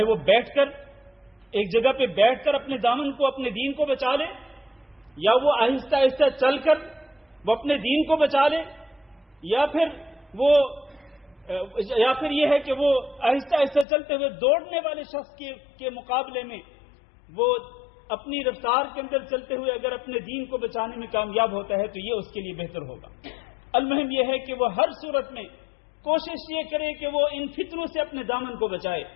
وہ بیٹھ کر ایک جگہ پہ بیٹھ کر اپنے دامن کو اپنے دین کو بچا لے, یا وہ آہستہ آہستہ چل کر وہ اپنے دین کو بچا لے, یا پھر یہ ہے کہ وہ آہستہ آہستہ چلتے ہوئے دوڑنے والے شخص کے مقابلے میں وہ اپنی رفتار کے اندر چلتے ہوئے اگر اپنے دین کو بچانے میں کامیاب ہوتا ہے تو یہ اس کے لیے بہتر ہوگا. المہم یہ ہے کہ وہ ہر صورت میں کوشش یہ کرے کہ وہ ان فتنوں سے اپنے دامن کو بچائے.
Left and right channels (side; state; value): right; drops out; at 13.9 s